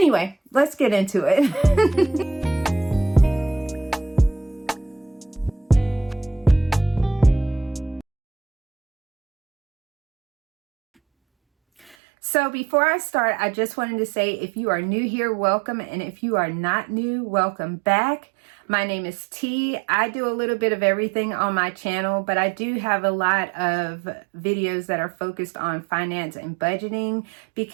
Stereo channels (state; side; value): drops out; left; at 12.0 s